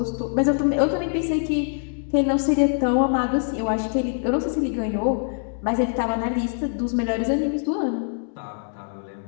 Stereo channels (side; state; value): right; silent; digital silence